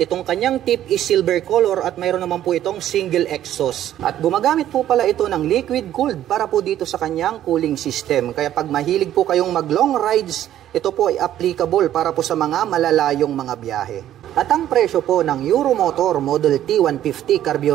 kanyang tip is silver color at mayroon naman po itong single exhaust. At gumagamit po pala ito ng liquid cooled para po dito sa kanyang cooling system. Kaya pag mahilig po kayong mag long rides, ito po ay applicable para po sa mga malalayong mga biyahe. At ang presyo po ng Euromotor Model T 150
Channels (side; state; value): left; quieter; 11.9 dB